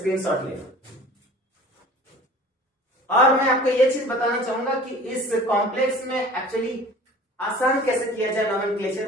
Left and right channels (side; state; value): both; normal; correlation 0.44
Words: ले लो। और मैं आपको यह चीज बताना चाहूंगा कि इस कॉम्प्लेक्स में एक्चुअली आसान कैसे किया जाए